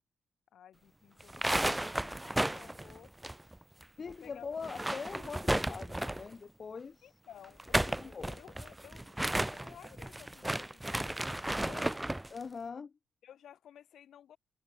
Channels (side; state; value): both; normal; correlation 0.98